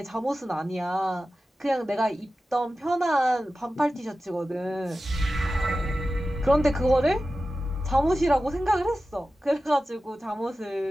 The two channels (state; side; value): normal; both; correlation 0.94